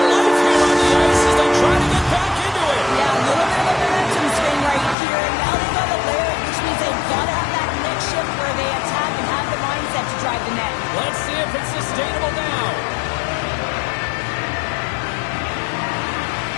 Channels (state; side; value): drops out; right; at 5.0 s